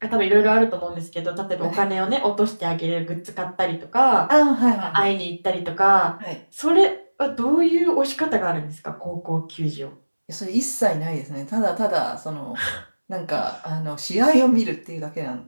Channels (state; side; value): inverted; both; correlation -1.00